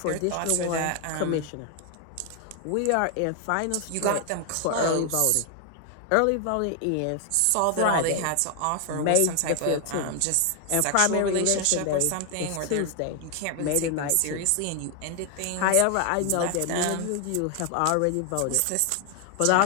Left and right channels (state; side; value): different; both; correlation 0.00